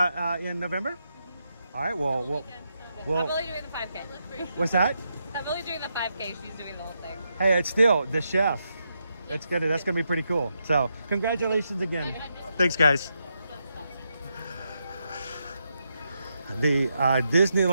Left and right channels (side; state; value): both; inverted; correlation -0.83